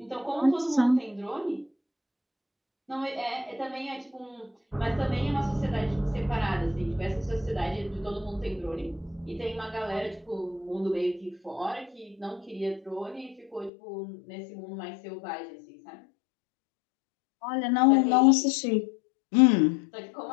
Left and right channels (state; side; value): drops out; right; at 13.7 s